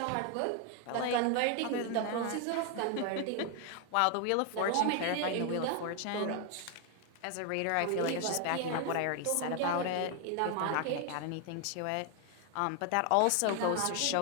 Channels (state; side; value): different; both; correlation 0.01